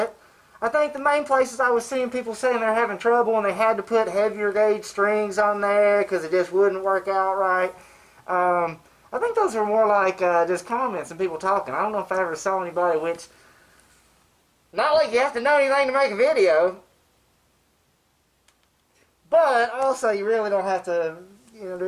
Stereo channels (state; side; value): identical; both; correlation 1.00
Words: I think the main places I was seeing people saying they're having trouble and they had to put heavier gauge strings on there because it just wouldn't work out right. I think those are more like just comments and people talking. I don't know if I ever saw anybody, which, not like you have to know anything to make a video, but also you really don't have to, you know,